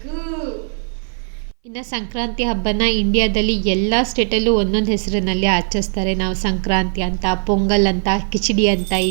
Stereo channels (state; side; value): silent; left; 60 dB below the other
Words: ಇನ್ನು ಸಂಕ್ರಾಂತಿ ಹಬ್ಬನ ಇಂಡಿಯಾದಲ್ಲಿ ಎಲ್ಲ ಸ್ಟೇಟಲ್ಲೂ ಒಂದೊಂದು ಹೆಸರಿನಲ್ಲಿ ಆಚರಿಸ್ತಾರೆ. ನಾವು ಸಂಕ್ರಾಂತಿ ಅಂತ, ಪೊಂಗಲ್ ಅಂತ, ಕಿಚಡಿ ಅಂತ ಈ